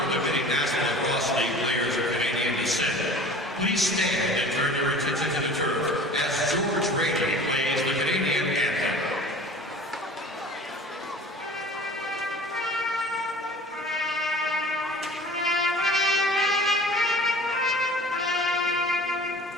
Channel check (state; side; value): normal; both; correlation 0.43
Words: of the many National Lacrosse League players of Canadian descent, please stand and turn your attention to the turf as George Brady plays the Canadian anthem.